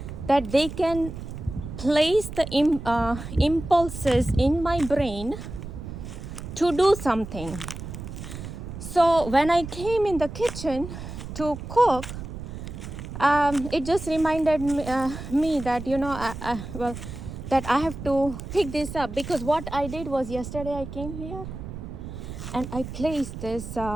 that they can place the impulses in my brain to do something. So when I came in the kitchen to cook, it just reminded me that, you know, that I have to pick this up. Because what I did was, yesterday I came here and I placed this.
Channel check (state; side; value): noise; right; rumble, 9 dB below the sound